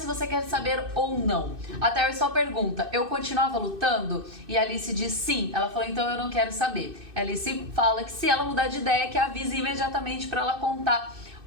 você quer saber ou não. A Terry só pergunta, eu continuava lutando? E a Alice diz sim. Ela falou, então eu não quero saber. A Alice fala que se ela mudar de ideia, que avise imediatamente para ela contar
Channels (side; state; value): left; late; 2.6 ms